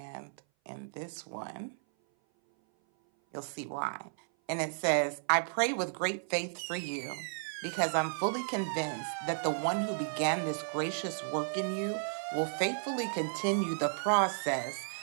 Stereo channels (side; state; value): left; silent; 55 dB below the other